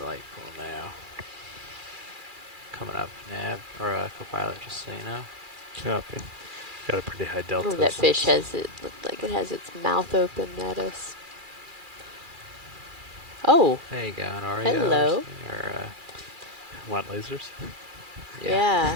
the light pool now. Coming up, nav or co-pilot, just so you know. Copy. Got a pretty high delta. Ooh, that fish looked like it has its mouth open at us. Oh, There you go, an Oreo. hello. Or, Want lasers? Yeah.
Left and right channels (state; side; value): late; left; 2.4 ms